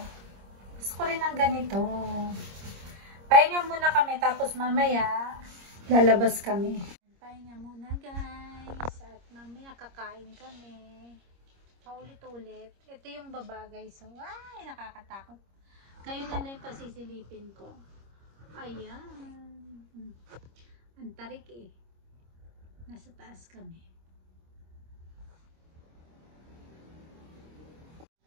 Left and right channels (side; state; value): left; late; 26 ms